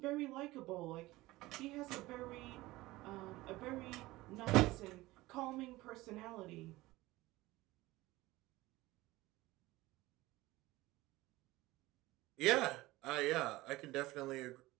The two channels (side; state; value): left; quieter; 19.0 dB